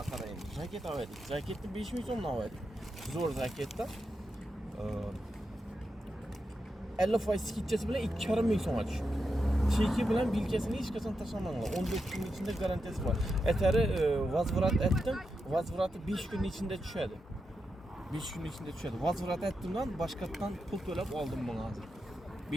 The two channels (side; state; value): both; normal; correlation 0.87